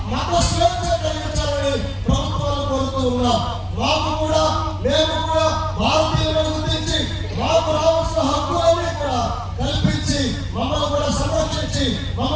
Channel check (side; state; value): both; identical; correlation 1.00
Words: మత స్వేచ్ఛ కలిగించాలని ప్రభుత్వాలు కోరుతూ ఉన్నాం. మాకు కూడా, మేము కూడా భారతీయులను గుర్తించి మాకు రావాల్సిన హక్కులన్నీ కూడా కల్పించి మమ్మల్ని కూడా సంరక్షించి